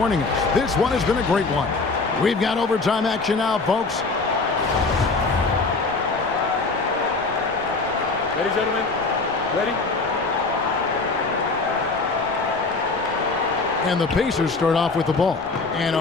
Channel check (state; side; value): quieter; right; 3.9 dB